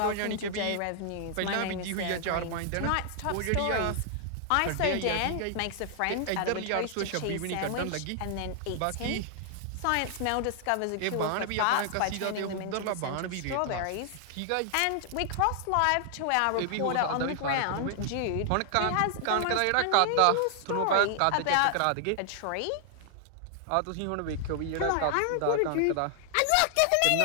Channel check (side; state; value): both; different; correlation 0.00